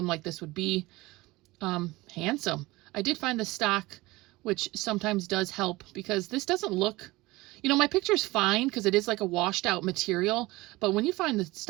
like this would be. Handsome. I did find the stock, which sometimes does help because this doesn't look, you know, my picture's fine because it is like a washed out material, but when you find the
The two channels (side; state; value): left; quieter; 20.7 dB